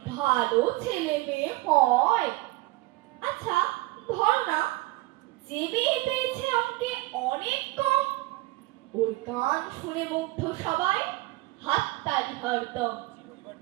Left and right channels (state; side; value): quieter; left; 20.0 dB